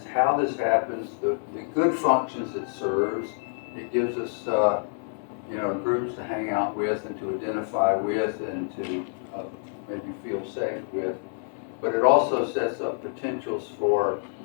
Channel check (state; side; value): silent; right; 60 dB below the other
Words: how this happens, the good functions it serves. It gives us you know, groups to hang out with and to identify with and to maybe feel safe with. But it also sets up potentials for